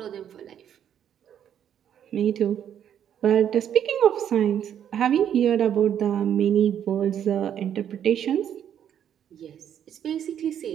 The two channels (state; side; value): quieter; left; 9.5 dB